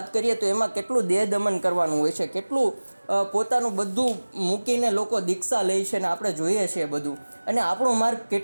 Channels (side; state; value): both; inverted; correlation -1.00